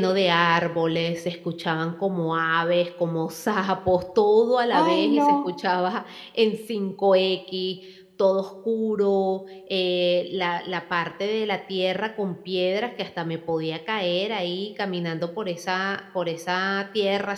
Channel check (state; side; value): identical; both; correlation 1.00